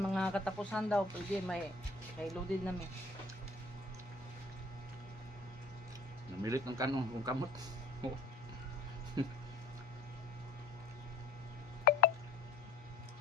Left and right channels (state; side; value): quieter; right; 3.1 dB